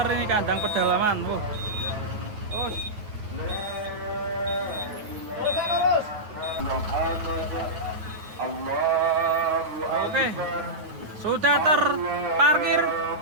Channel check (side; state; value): left; late; 9.4 ms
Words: ini kandang pedalaman. Terus oke, sudah terparkir